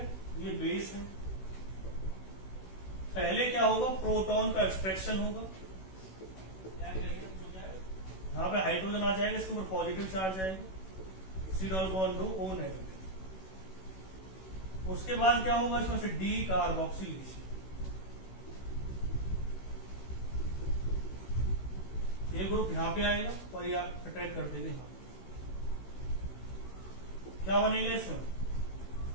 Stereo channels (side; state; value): right; late; 16 ms